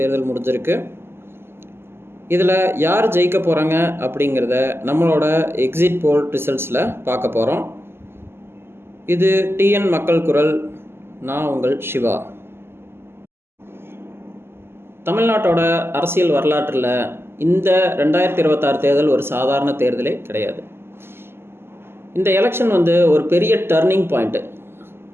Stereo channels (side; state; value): left; late; 0.12 ms